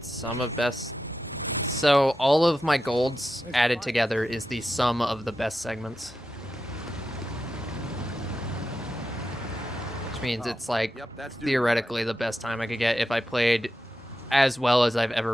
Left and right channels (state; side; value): normal; both; correlation 0.89